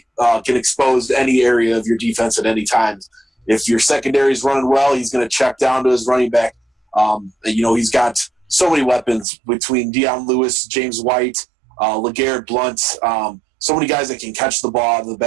can expose any area of your defense at any time. If your secondary is running well, he's going to check down to his running back. He's got so many weapons between Deion Lewis, James White, LeGarrette Blount, so many guys that can catch the ball out of the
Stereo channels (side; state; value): left; drops out; at 9.2 s